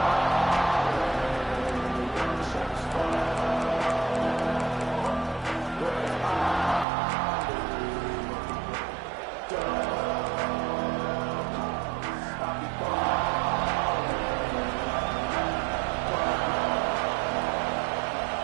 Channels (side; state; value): left; drops out; at 6.9 s